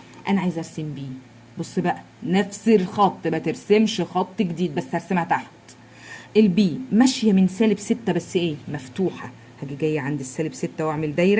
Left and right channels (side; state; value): both; identical; correlation 1.00